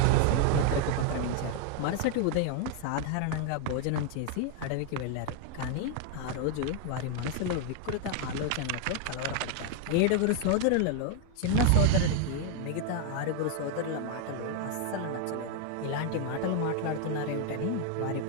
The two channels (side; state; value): both; different; correlation 0.00